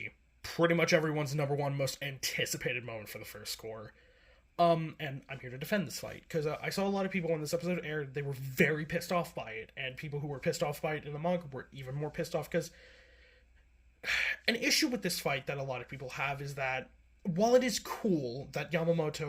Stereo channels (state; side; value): identical; both; correlation 1.00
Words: Pretty much everyone's number one most anticipated moment for the first Cour. And I'm here to defend this fight, because I saw a lot of people when this episode aired, they were very pissed off by it, and people who were pissed off by it in the manga were even more pissed off, because an issue with this fight that a lot of people have is that, while it is cool that